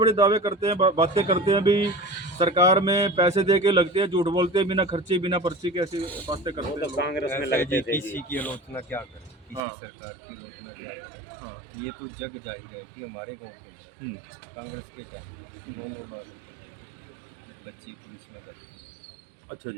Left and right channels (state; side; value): drops out; left; at 9.6 s